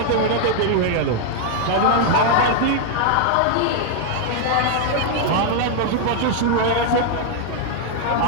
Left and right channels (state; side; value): different; both; correlation 0.00